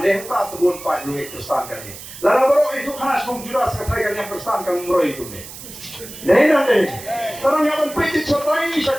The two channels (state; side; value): noise; right; hiss, 14 dB below the sound